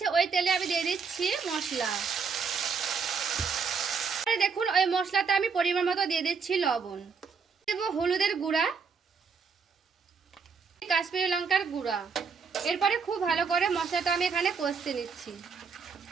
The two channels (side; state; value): left; quieter; 5.5 dB